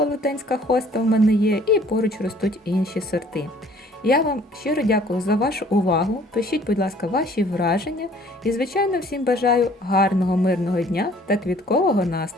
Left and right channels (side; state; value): both; normal; correlation 0.56